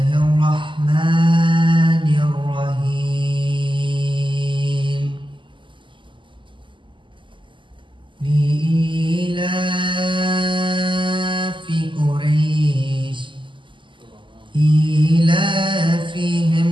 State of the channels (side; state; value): left; late; 0.24 ms